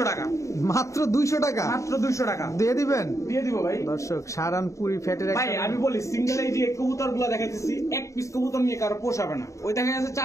টাকা, মাত্র 200 টাকা। মাত্র 200 টাকা দিয়ে দিবেন? দিয়ে দিব ভাই। দর্শক সাহারানপুরি ফ্যাটের ভাই একটা আমি বলি, সিঙ্গেল এই যে কবুতর গুলো দেখাইতেছি, এক পিস কবুতর নিয়ে কারো পোষাবে না। ওই দেখা যাচ্ছে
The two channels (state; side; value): late; right; 0.15 ms